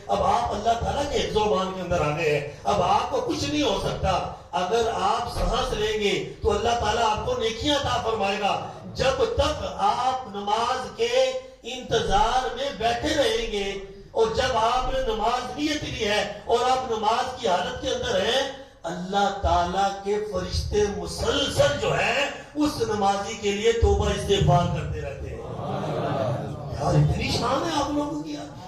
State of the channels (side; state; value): both; identical; correlation 1.00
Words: اب آپ اللہ تعالیٰ کے حفظ و امان کے اندر آ گئے ہیں. اب آپ کو کچھ نہیں ہو سکتا. اگر آپ سانس لیں گے تو اللہ تعالیٰ آپ کو نیکیاں عطا فرمائے گا. جب تک آپ نماز کے انتظار میں بیٹھے رہیں گے اور جب آپ نے نماز نیت لی ہے اور آپ نماز کی حالت کے اندر ہیں, اللہ تعالیٰ کے فرشتے مسلسل جو ہے اس نمازی کے لیے توبہ استغفار کرتے رہتے ہیں. اور اتنی شان ہے آپ لوگوں کی،